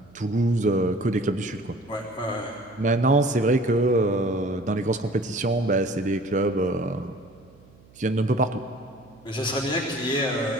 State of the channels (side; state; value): right; noise; hum, 26 dB below the sound